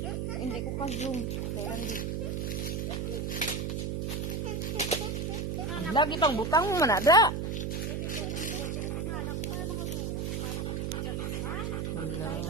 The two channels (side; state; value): right; noise; hum, 1 dB below the sound